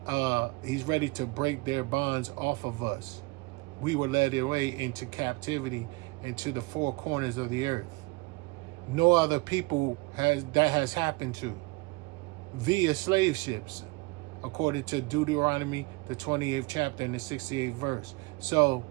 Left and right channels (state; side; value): quieter; left; 25.0 dB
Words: he's ready to break their bonds off of us. We were led away into captivity, into the four corners of the earth. No other people has happened to via slave ships, according to Deuteronomy, the 28th chapter and the 68th verse. So,